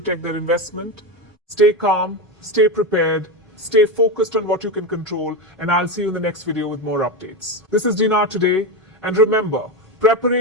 their investment. Stay calm, stay prepared, stay focused on what you can control, and I'll see you in the next video with more updates. This is Dinar Today, and remember,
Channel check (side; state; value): both; normal; correlation 0.15